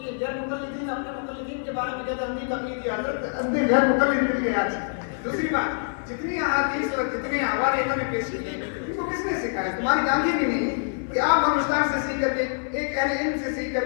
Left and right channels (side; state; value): right; silent; digital silence